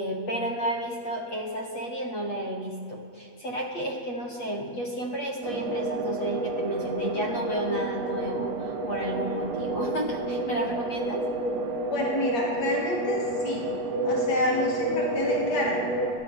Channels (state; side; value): late; right; 8.3 ms